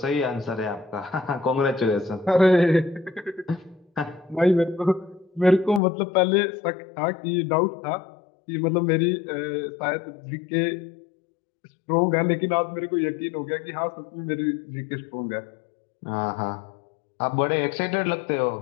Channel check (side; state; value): right; drops out; at 5.8 s